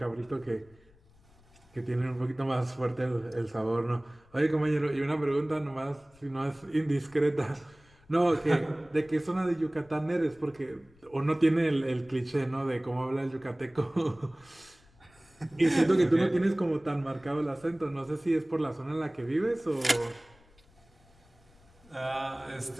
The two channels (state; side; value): noise; left; rumble, 29 dB below the sound